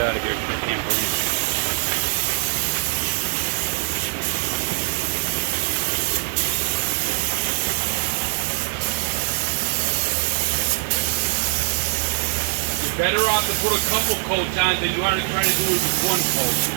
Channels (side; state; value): left; silent; 60 dB below the other